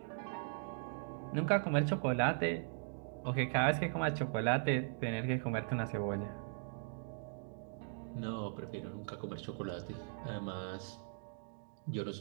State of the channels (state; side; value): silent; left; digital silence